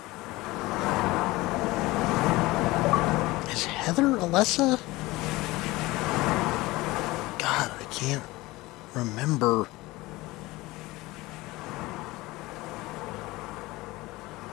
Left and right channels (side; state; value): right; quieter; 20.3 dB